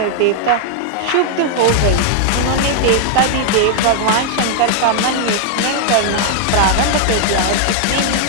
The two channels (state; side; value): different; both; correlation 0.00